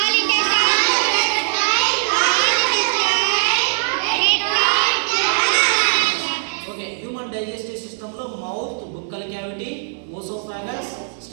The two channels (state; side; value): silent; left; digital silence